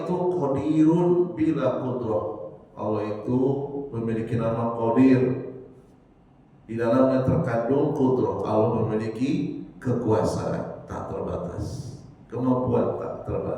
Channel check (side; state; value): both; identical; correlation 1.00